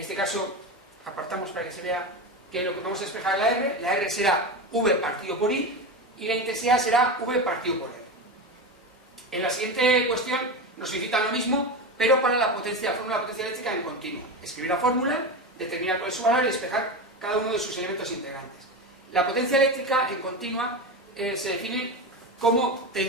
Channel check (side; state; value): both; normal; correlation 0.20